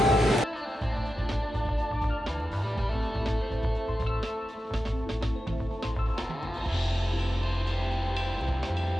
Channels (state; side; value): normal; both; correlation 0.91